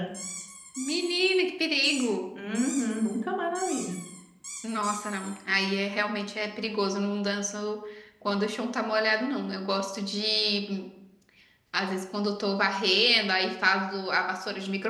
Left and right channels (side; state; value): both; identical; correlation 1.00